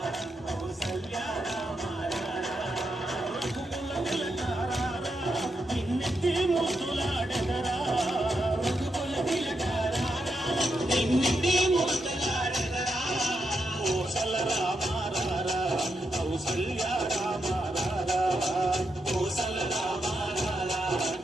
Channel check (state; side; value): normal; both; correlation 0.84